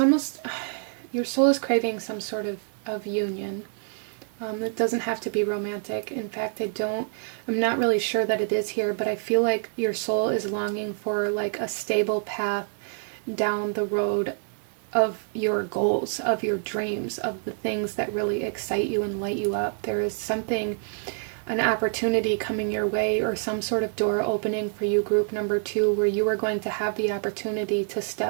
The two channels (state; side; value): silent; left; digital silence